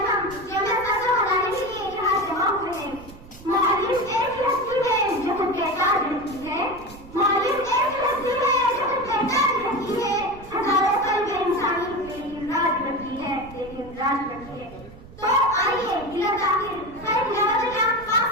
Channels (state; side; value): noise; right; rumble, 18 dB below the sound